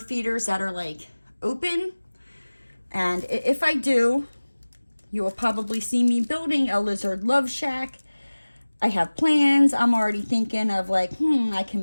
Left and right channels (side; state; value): both; inverted; correlation -1.00